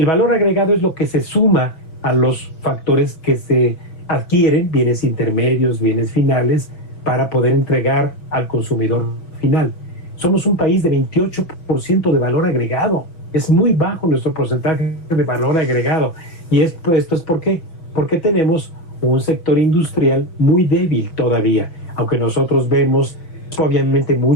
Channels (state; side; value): late; right; 6.2 ms